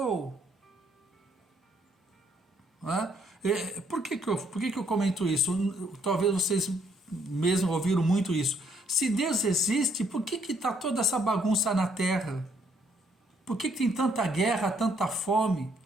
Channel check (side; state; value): both; normal; correlation 0.68